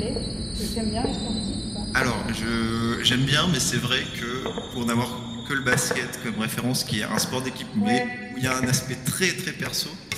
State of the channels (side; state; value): both; identical; correlation 1.00